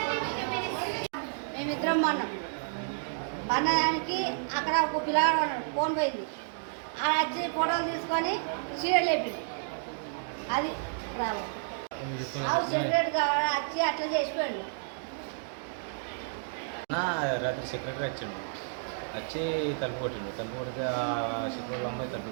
మేమిద్దరం పన్నానికి అక్కడ ఒక పిల్లగాడు ఫోన్ పోయింది. ఆడ వచ్చి ఫోటోలు తీసుకొని సీరియల్ లేపింది. అది ప్రాబ్లం. సెక్రటరీ వచ్చి అట్లా చేసిపోయాడు. రాత్రి సెక్రటరీ వచ్చాడు, వచ్చి తలుపు కొట్టిండు. తలుపు కొడితే సెక్రటరీ అమ్మాయి తలుపు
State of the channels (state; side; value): silent; left; digital silence